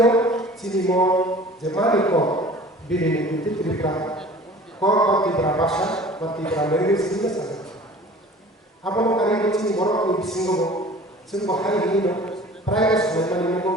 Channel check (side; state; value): both; normal; correlation 0.45